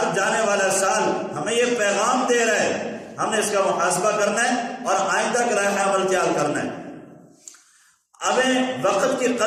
جانے والا سال ہمیں یہ پیغام دے رہا ہے، ہم نے اس کا محاسبہ کرنا ہے اور آئندہ کا لائحہ عمل تیار کرنا ہے۔ ہمیں وقت کی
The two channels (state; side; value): identical; both; correlation 1.00